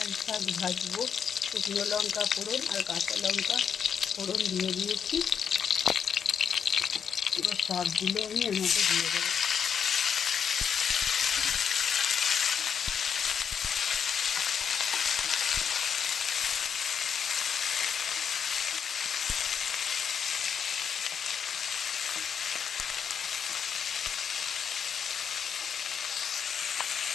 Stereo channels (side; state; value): right; quieter; 7.3 dB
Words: শাক ভাজবো, শুকনো লঙ্কা ফোড়ন আর কাঁচা লঙ্কা ফোড়ন দিয়ে দিয়েছি। এবার শাকগুলো আমি এর মধ্যে দিয়ে দেবো।